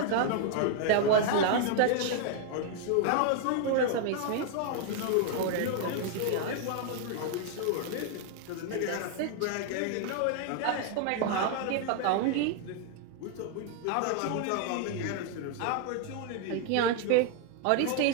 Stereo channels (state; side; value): different; both; correlation 0.00